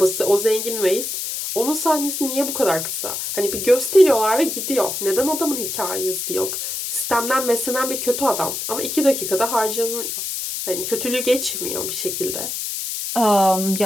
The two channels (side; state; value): left; noise; hiss, 4 dB below the sound